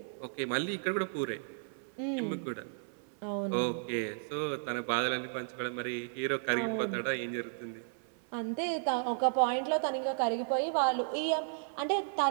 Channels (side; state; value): left; silent; 55 dB below the other